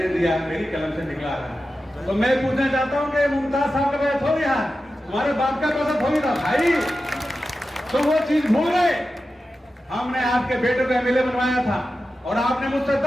दिया, मेरी कलम से निकला है। तो मैं पूछना चाहता हूं कि मुमताज साहब का पैसा थोड़ी है, तुम्हारे बाप का पैसा थोड़ी था भाई, तो वो चीज भूल गए। हमने आपके बेटे को एमएलए बनवाया था और आपने मुझसे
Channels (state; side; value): normal; both; correlation 0.92